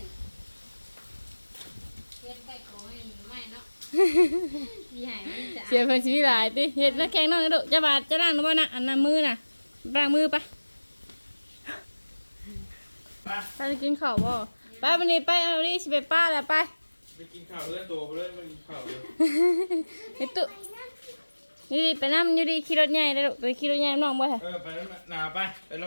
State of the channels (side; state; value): both; inverted; correlation -1.00